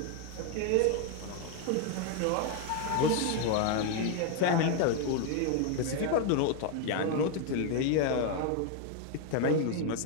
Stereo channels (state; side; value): different; both; correlation 0.01